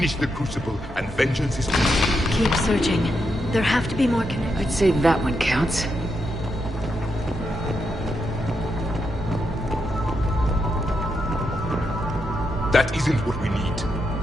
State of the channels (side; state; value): both; normal; correlation 0.83